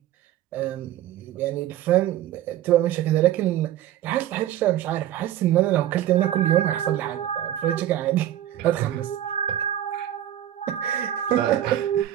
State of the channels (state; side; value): quieter; left; 12.1 dB